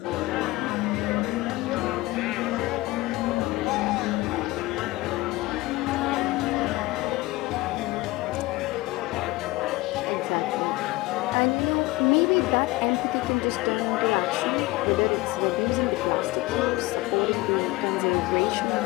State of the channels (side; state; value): right; quieter; 20.1 dB